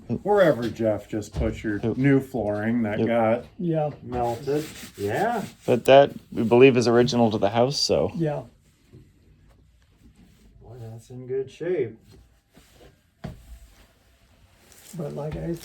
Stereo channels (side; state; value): both; identical; correlation 1.00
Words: wherever Jeff just put your new flooring that Yep. got Yeah, melted. Yeah. But that we believe is original to the house, so yeah. Boy, that's in good shape. But like I